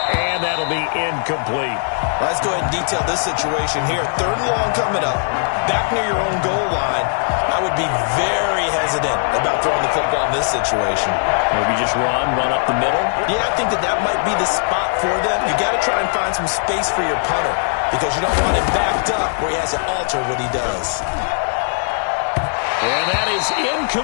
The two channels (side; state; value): right; silent; digital silence